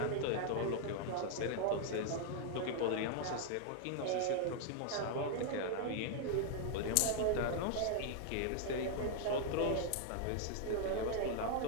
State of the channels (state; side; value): different; both; correlation 0.00